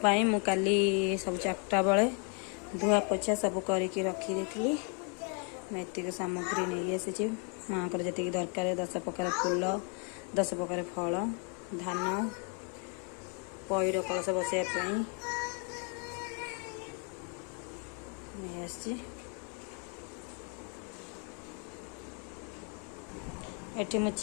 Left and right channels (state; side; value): quieter; right; 39.3 dB